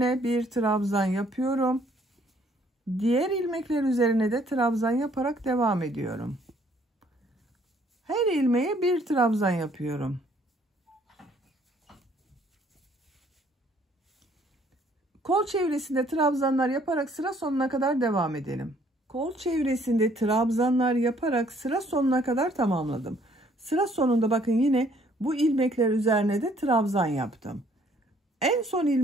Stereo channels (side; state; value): both; normal; correlation 0.62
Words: bir trabzan yapıyorum. Diğer ilmekler üzerine de trabzan yaparak devam ediyorum. Her ilmeğe bir trabzan yapıyorum. Kol çevresinde trabzanlar yaparak sıra sonuna kadar devam edelim. Kol çevresinde trabzanlar yaparak sıra sonuna kadar tamamladım. Sıra sonunda bakın yine bu ilmekler üzerine de trabzan yaptım. En son